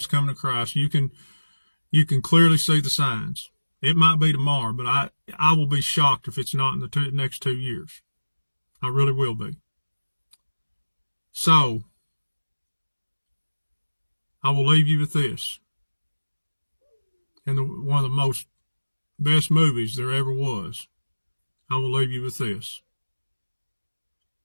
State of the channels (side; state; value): both; inverted; correlation -1.00